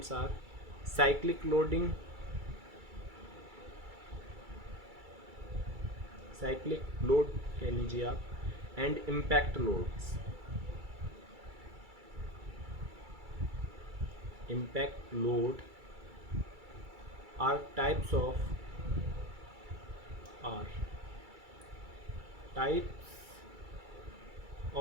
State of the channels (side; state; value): left; late; 2.3 ms